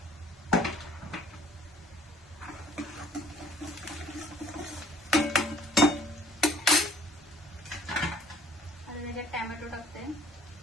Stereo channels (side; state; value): both; normal; correlation 0.55